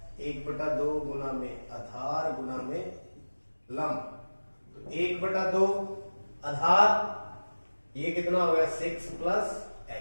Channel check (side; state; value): both; inverted; correlation -1.00